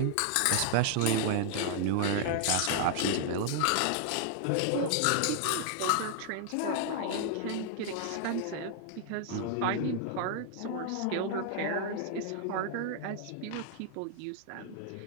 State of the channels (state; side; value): different; both; correlation 0.00